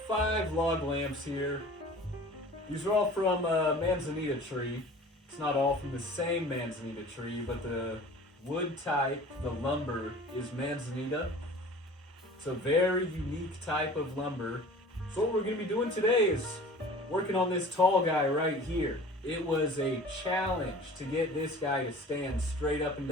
log lamps here. These are all from a Manzanita tree. It's not all from the same Manzanita tree, but the wood type, the lumber, is Manzanita. It's a very unique type of lumber. So what we're going to be doing today is working on this tall guy right here. It was a challenge to get this guy to stand straight up and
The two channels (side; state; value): both; normal; correlation 0.44